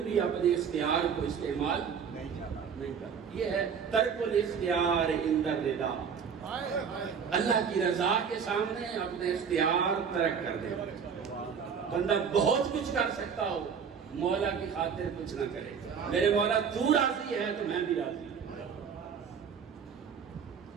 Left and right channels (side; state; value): left; quieter; 6.8 dB